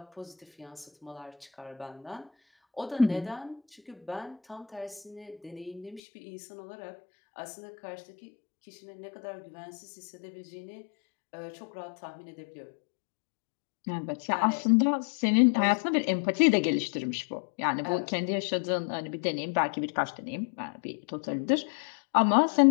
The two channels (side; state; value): right; drops out; at 6.0 s